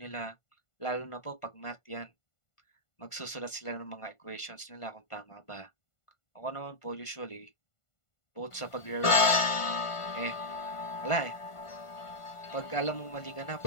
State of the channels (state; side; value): late; right; 1.5 ms